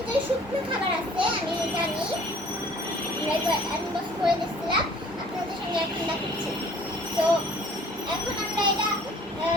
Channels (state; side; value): normal; both; correlation 0.53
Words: শুকনো খাবার আছে, আমি জানি। আনবক্স করে দিচ্ছিলাম আপনাদের সঙ্গে, এখন দেখাচ্ছি। তো এখন আমরা এটা